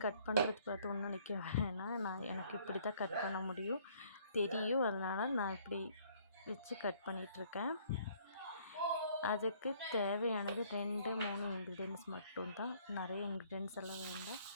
கட் பண்ணுறது பார்த்து ஒன்றும் நிற்க வேணாம், எனக்கு இப்படி தான் கட் பண்ண முடியும் தெரியும், அதனால் நான் இப்படி வச்சு கட் பண்ணிகிட்ருக்கேன். அதுக்கு தேவையானது 2-3 இன்க்ரீடியன்ட்ஸ் மட்டும்தான், நிறைய இன்க்ரீடியன்ட்ஸ் எல்லாம் வேண்டாம்.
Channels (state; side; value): inverted; both; correlation -0.61